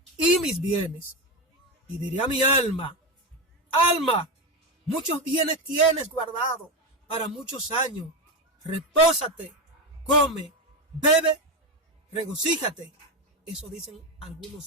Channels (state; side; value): normal; both; correlation 0.14